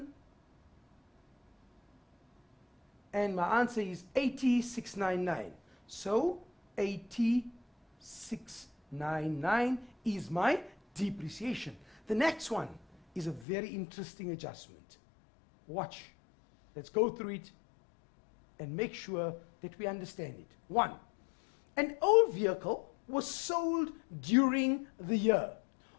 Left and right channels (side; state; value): right; drops out; at 13.5 s